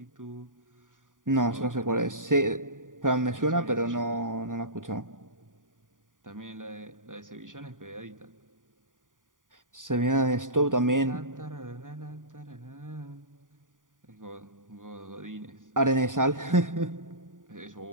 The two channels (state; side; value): late; left; 0.88 ms